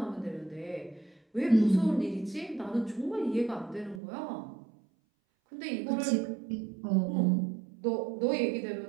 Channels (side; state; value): left; drops out; at 4.0 s